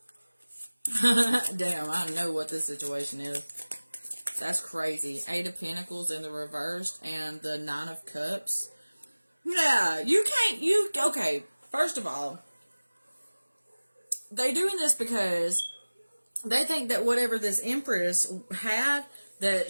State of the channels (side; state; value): both; inverted; correlation -1.00